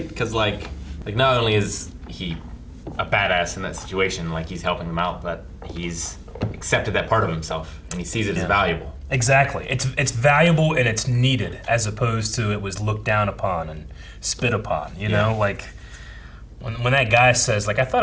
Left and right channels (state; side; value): identical; both; correlation 1.00